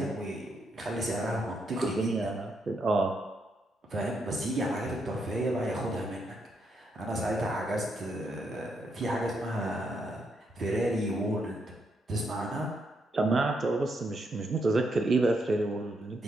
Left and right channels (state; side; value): normal; both; correlation 0.78